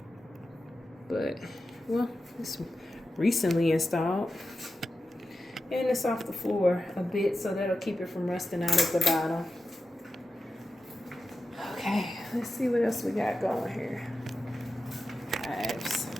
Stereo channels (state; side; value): normal; both; correlation 0.91